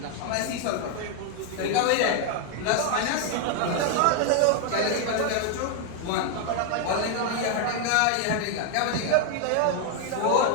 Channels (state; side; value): different; both; correlation 0.00